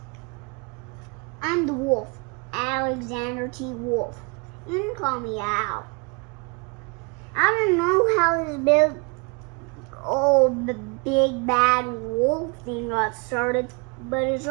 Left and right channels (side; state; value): left; quieter; 31.2 dB